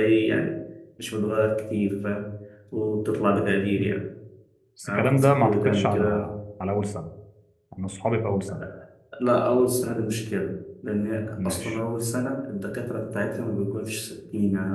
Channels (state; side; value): identical; both; correlation 1.00